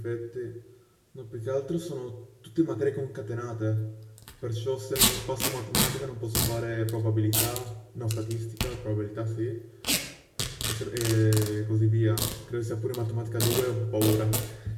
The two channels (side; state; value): both; identical; correlation 1.00